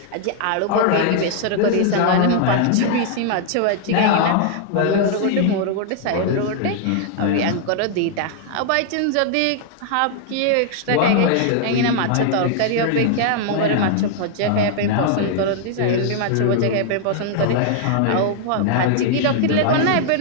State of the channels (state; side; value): different; both; correlation -0.01